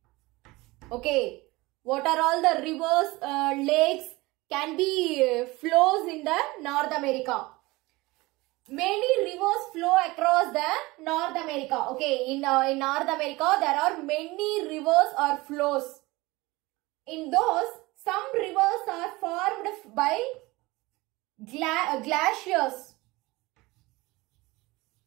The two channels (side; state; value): left; quieter; 21.7 dB